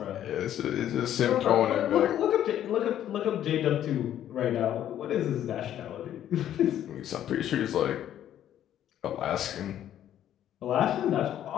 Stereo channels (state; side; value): quieter; right; 11.2 dB